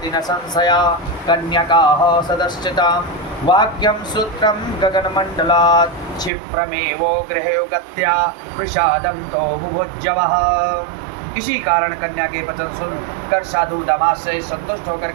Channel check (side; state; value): left; drops out; at 6.3 s